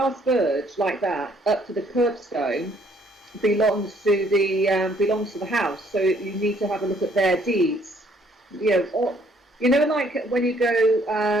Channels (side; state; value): both; normal; correlation 0.64